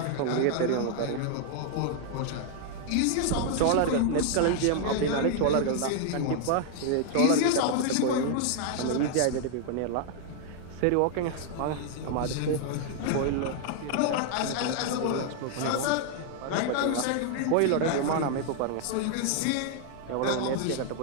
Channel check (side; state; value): both; different; correlation 0.00